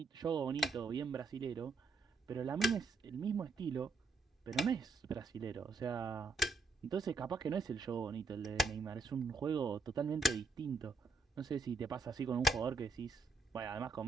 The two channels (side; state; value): left; quieter; 3.7 dB